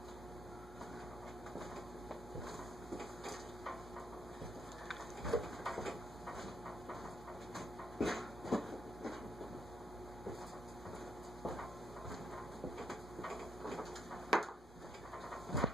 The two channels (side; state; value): both; normal; correlation 0.73